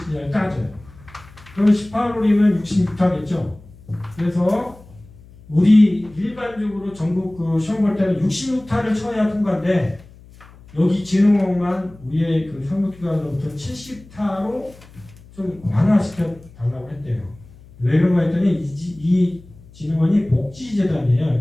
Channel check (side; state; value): left; noise; hum, 23 dB below the sound